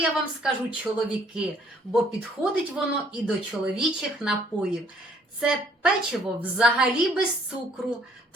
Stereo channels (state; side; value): normal; both; correlation 0.62